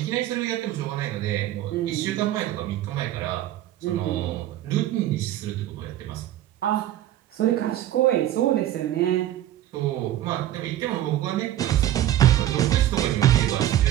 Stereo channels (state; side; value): quieter; left; 12.9 dB